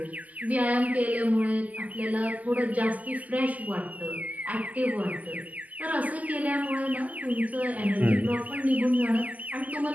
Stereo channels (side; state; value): left; late; 0.077 ms